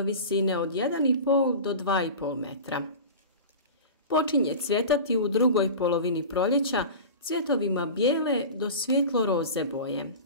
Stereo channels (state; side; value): inverted; both; correlation -0.32